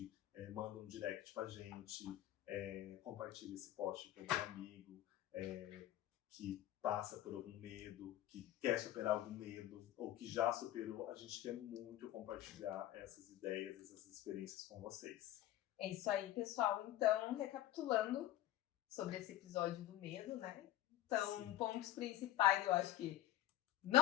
manda um direct pra gente, compartilha esse post com algum amigo que passa por algum medo, que quer superar algum medo ou que já superou. A gente quer muito compartilhar essas ideias, essas experiências com vocês. É isso aí, pessoal. Então, recapitulando sobre esse episódio do medo, né? Então, pontos principais, eu acho que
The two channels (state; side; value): quieter; right; 13.7 dB